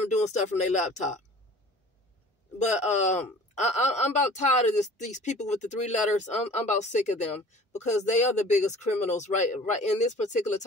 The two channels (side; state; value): both; normal; correlation 0.46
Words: doing stuff from their laptop. But I'm about tired of these people with the 3 letters. I'm about sick of them because they are the biggest criminals right in this particular